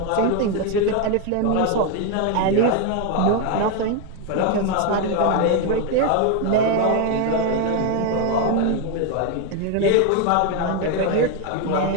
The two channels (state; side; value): different; both; correlation 0.01